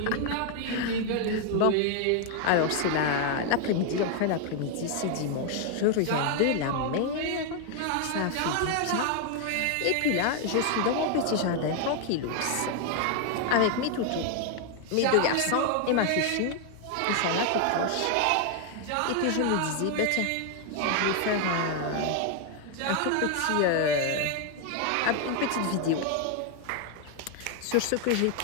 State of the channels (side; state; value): both; different; correlation 0.00